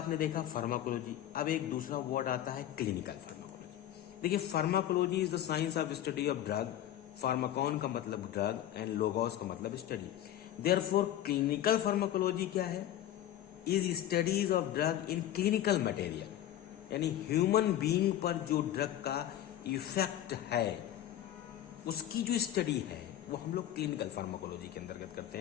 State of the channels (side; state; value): right; quieter; 12.1 dB